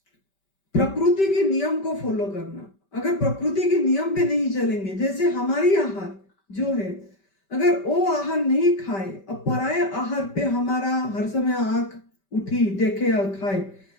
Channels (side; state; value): right; late; 5.1 ms